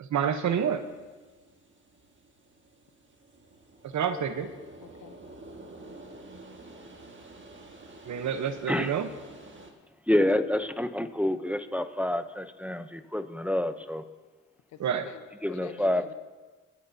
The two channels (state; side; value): normal; both; correlation 0.58